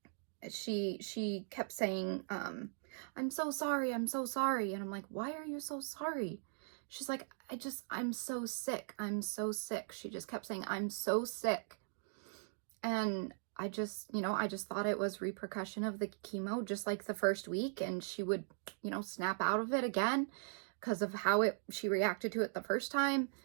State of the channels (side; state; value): left; silent; digital silence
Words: she kept saying, I'm so sorry. I'm so sorry. And I'm like, why are you so sorry? She's like, I'm so sick. I'm so sick. She just kept saying, I'm so sick. And I just thought it was repercussion of the chemo, just like the first week. And she would, you know, snap out of it again because of how she reacted to it the first time.